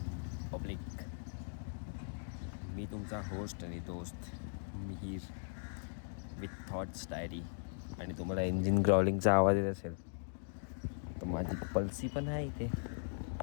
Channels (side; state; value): right; silent; digital silence